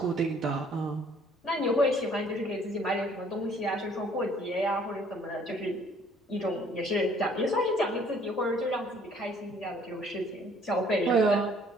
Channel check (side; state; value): both; normal; correlation 0.59